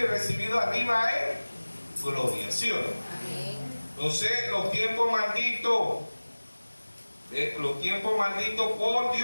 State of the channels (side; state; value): both; inverted; correlation -1.00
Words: y recibido arriba en gloria, ¿sí o no? Amén. Entonces, los tiempos malditos Los tiempos malditos por